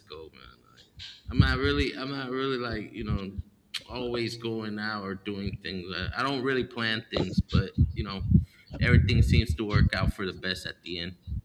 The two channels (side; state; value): both; identical; correlation 1.00